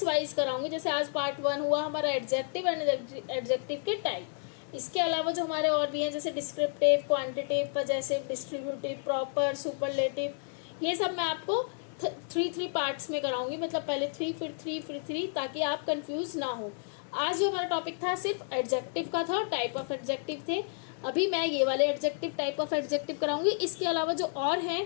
वाइज कराऊंगी। जैसे आज पार्ट 1 हुआ हमारा एडजेक्टिव एंड एडजेक्टिव के टाइप। इसके अलावा जो हमारे और भी हैं जैसे descriptive, quantitative, possessive, distributive, proper, superlative, ये सब मैं आपको 3 पार्ट्स में कराऊंगी। मतलब पहले 3 फिर 3 फिर 3, ताकि आप कंफ्यूज ना हो। आज जो हमारा टॉपिक था सिर्फ एडजेक्टिव का था, टाइप ऑफ एडजेक्टिव थे। अभी मैं ये वाले एडजेक्टिव, टाइप ऑफ एडजेक्टिव कराऊंगी। इसके अलावा जो और हैं,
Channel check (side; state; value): right; silent; 57 dB below the other